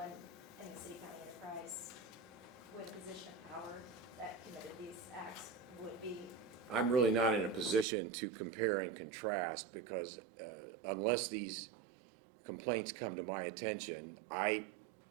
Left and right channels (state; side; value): drops out; left; at 7.9 s